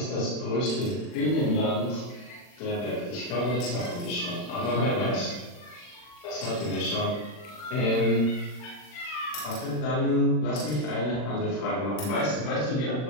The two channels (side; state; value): right; late; 40 ms